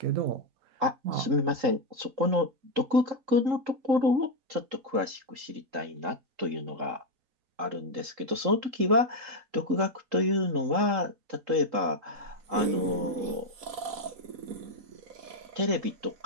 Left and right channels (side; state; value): left; late; 3.7 ms